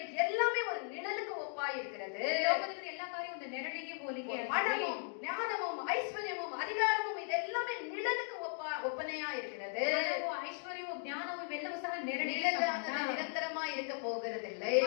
எல்லாமே ஒரு நிழலுக்கு ஒப்பா இருக்கிறது. ಲೋಕದಲ್ಲಿ ಎಲ್ಲ ಕಾರ್ಯ ಒಂದು ನೆರಳಿಗೆ ಹೋಲಿಕೆ பணமும் ஞானமும் ஐஸ்வர்யமும் அதிகாரமும் இதெல்லாமே நிழலுக்கு ஒப்பனையா இருக்கிறது. ಐಶ್ವರ್ಯವೂ ಜ್ಞಾನವೂ ಇವೆಲ್ಲವೂ ಸಹ ನೆರಳಿಗೆ நிரந்தரமா இருக்க போகிறதில்லை.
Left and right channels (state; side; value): silent; right; 53 dB below the other